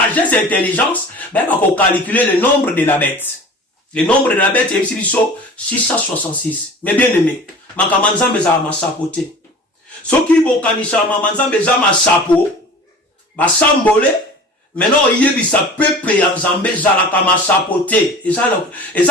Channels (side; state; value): both; normal; correlation 0.40